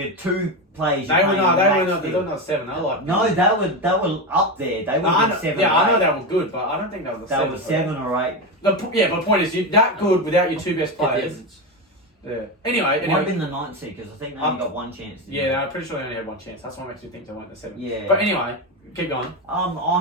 2 players. They were not 7. They were like. No, they were up there. They were 7 Yeah, or I know 8. they were good, but I don't think they were 7. They were 7 or 8. But the point is, you're that good without your 2 best players. Yeah. Anyway. It might have been the 9th seed, because I think they only got 1 chance. Yeah, I'm pretty sure they only had 1 chance. That's what makes me think they went to 7. Yeah. But anyway, keep going. I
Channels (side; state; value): both; normal; correlation 0.15